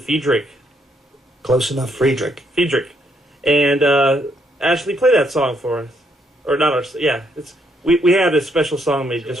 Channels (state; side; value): normal; both; correlation 0.73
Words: Close enough, Friedrich. Friedrich. And Ashley, play that song for us. Or not our, yeah. We had a special song made